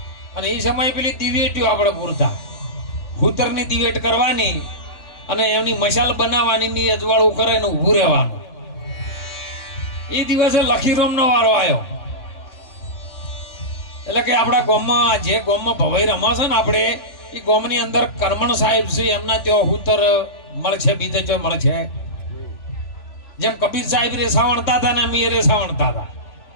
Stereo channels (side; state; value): right; late; 3.4 ms